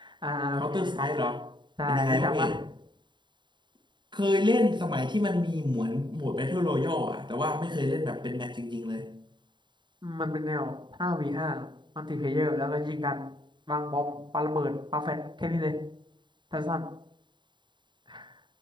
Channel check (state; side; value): late; left; 0.23 ms